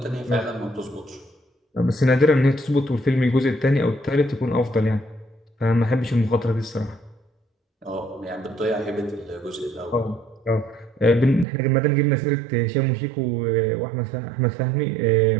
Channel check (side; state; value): left; drops out; at 11.5 s